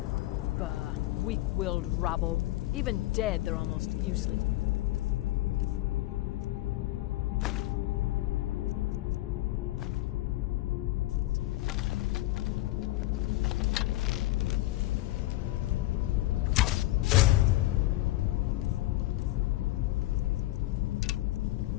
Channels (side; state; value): right; quieter; 17.4 dB